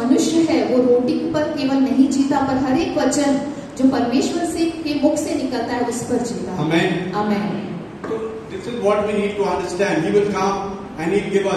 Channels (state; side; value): identical; both; correlation 1.00